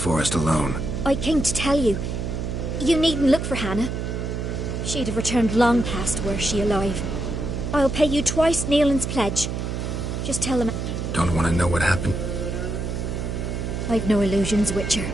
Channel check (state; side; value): noise; right; hum, 3 dB below the sound